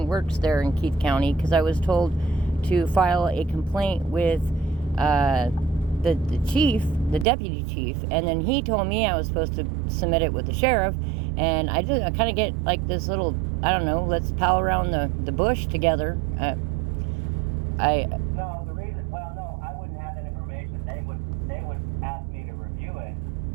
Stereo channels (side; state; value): left; drops out; at 7.2 s